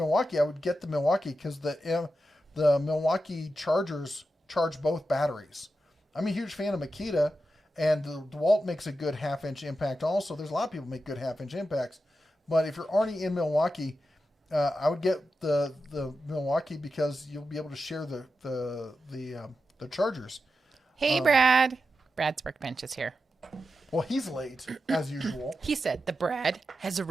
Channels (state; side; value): normal; both; correlation 0.90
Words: I would get the Milwaukee, because the Milwaukee chargers charge both batteries. I'm a huge fan of Makita, and the DeWalt makes a good 1/2-inch impact also. There's a lot of people make good 1/2-inch impacts, but if you're already in Milwaukee, I would get the Milwaukee, because you'll be able to share the chargers. Hey, Brad. Brad's workbench is here. Well, he's late, as usual. He said the Brad has